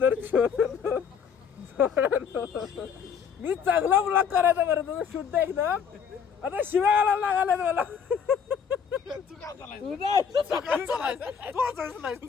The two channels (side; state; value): right; quieter; 7.0 dB